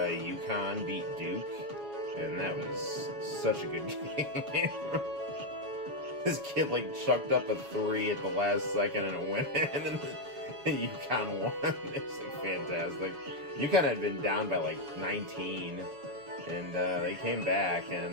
beat Duke, and that was such a good game. This kid like chucked up a 3 at the last second and it went in, and UConn won. It's like fantastic. UConn had been down by like 19, and they came back,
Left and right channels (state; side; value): late; left; 7.0 ms